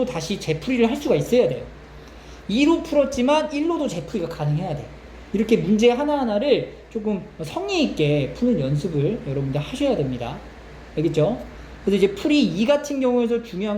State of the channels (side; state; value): both; identical; correlation 1.00